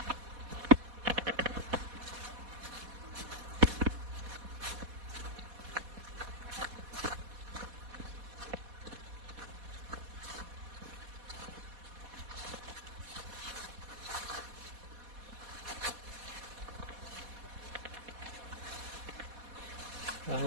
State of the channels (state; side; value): late; left; 4.2 ms